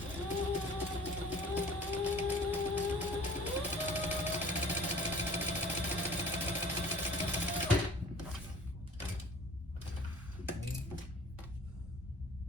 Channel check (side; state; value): both; normal; correlation 0.48